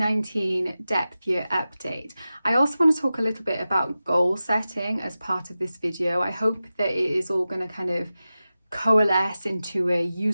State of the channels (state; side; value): inverted; both; correlation -0.94